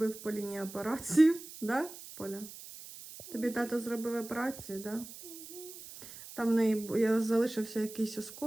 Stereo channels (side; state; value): right; noise; hiss, 14 dB below the sound